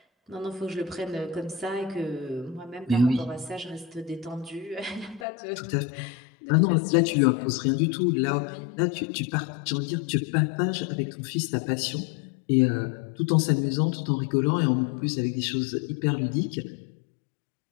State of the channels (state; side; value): drops out; right; at 5.2 s